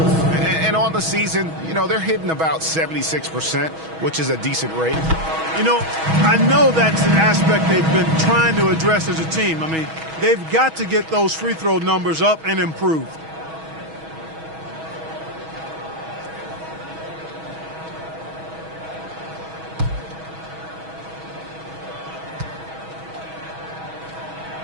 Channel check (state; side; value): late; left; 6.2 ms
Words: on the season, you know, they're hitting about 76%, which is a decent rate. You know, I know that's an aspect they've been trying to address as a team. I mean, they've got to get those free throw numbers up and improved.